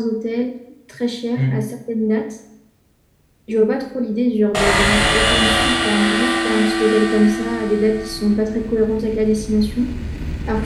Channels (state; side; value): identical; both; correlation 1.00